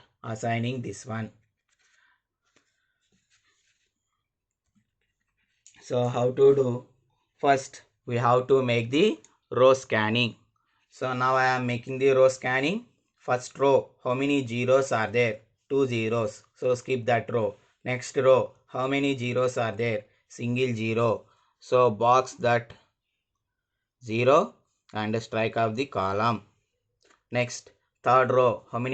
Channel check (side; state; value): both; identical; correlation 1.00